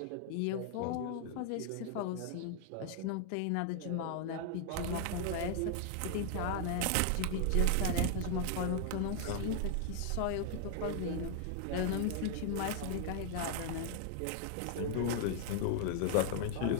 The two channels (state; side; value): different; both; correlation 0.00